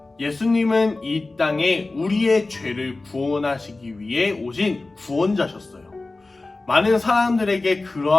예수님은 이 땅에 우리의 죄를 구원하시기 위해 오신 구원자셨어요. 많은 사람들에게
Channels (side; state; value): right; quieter; 3.3 dB